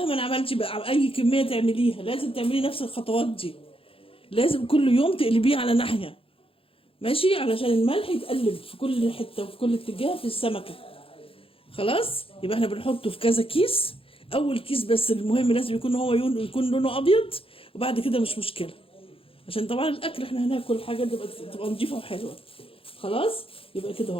عملتي بقى اي كميه تعمليها لازم تعملي نفس الخطوات دي. لازم كل يوم تقلبيه على ناحيه. ماشي علشان الملح يتقلب في كل حته وفي كل اتجاه في السمكه. خلاص. يبقى احنا بنحطه في كذا كيس. اول كيس بس المهم لازم يكون هو يكون لونه ابيض. وبعد كده مش مشكله. عشان طبعا الاكل احنا هناكل حاجه تبقى نضيفه وحلوه. خلاص. يبقى كده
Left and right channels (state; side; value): late; right; 0.27 ms